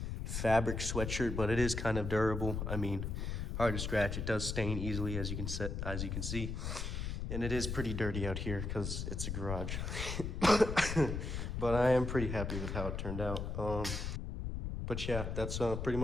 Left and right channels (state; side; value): noise; left; rumble, 3 dB below the sound